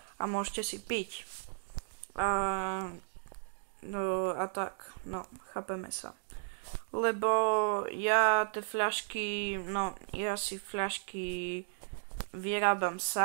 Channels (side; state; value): left; silent; digital silence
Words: a môžete si piť. No a tak, no, chápeme sa. Lebo ja tie fľašky, no, ja si fľašky vyrábam